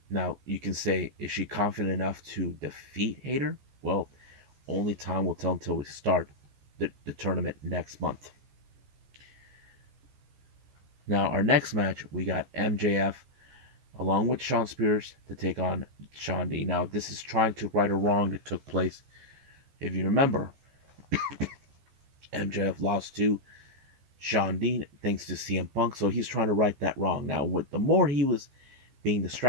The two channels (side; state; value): left; late; 14 ms